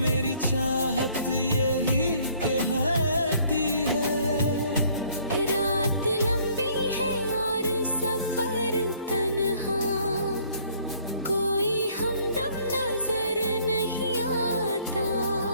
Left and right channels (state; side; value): inverted; both; correlation -0.61